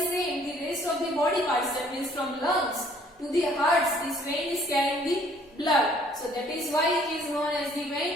same, the rest of the body parts, that means from lungs to the hearts, this vein is carrying the blood. So that is why it is known as the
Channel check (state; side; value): normal; both; correlation 0.59